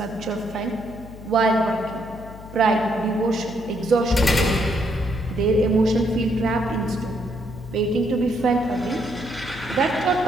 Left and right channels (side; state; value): left; noise; hum, 15 dB below the sound